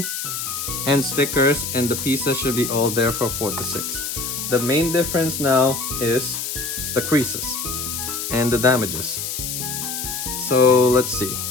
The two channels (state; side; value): noise; left; hiss, 4 dB below the sound